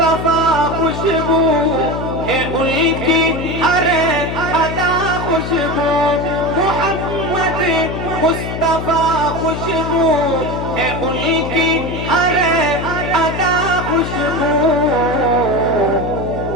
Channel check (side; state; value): left; noise; hum, 5 dB below the sound